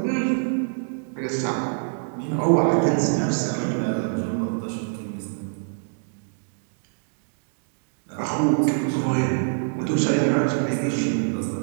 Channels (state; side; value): silent; left; digital silence